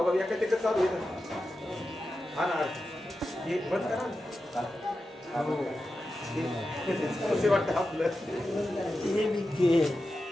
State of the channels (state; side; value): normal; both; correlation 0.91